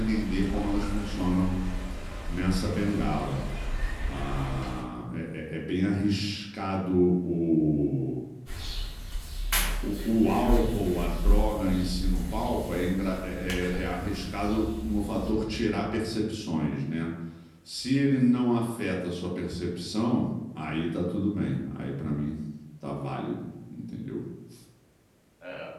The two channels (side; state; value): both; identical; correlation 1.00